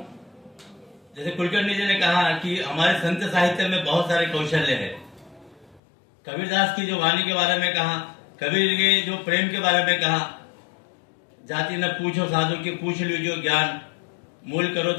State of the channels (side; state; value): right; drops out; at 5.8 s